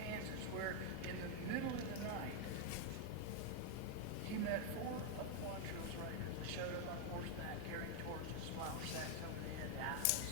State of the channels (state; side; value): different; both; correlation 0.01